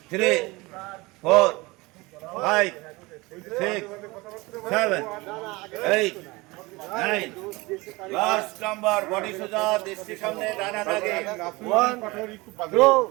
3, 4, 5, 6, 7, 8, 9. Last number, body soja, dishti samne, dana dage. 1,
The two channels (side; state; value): left; quieter; 23.2 dB